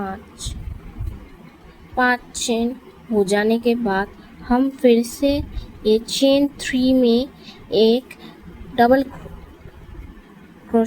5 चेन हो जाने के बाद हम फिर से ये चेन 3 में एक डबल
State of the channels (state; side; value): identical; both; correlation 1.00